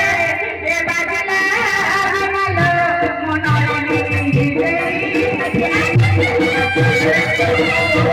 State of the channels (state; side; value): identical; both; correlation 1.00